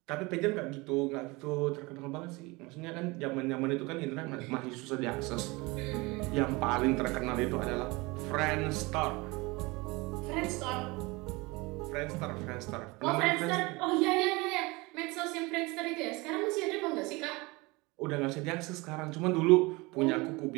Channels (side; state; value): left; quieter; 24.4 dB